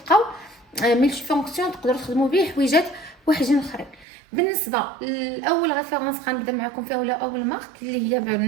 ملتي فونكسيون تقدروا تخدموا به حويجات واحدين اخرين. بالنسبه لاول ريفيرونس غنبدا معكم فيها، ولا اول مارك اللي هي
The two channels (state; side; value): drops out; left; at 4.0 s